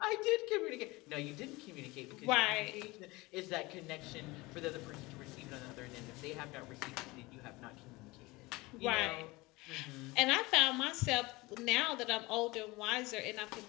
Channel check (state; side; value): quieter; right; 22.3 dB